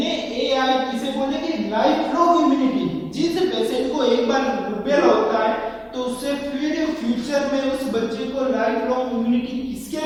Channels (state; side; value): identical; both; correlation 1.00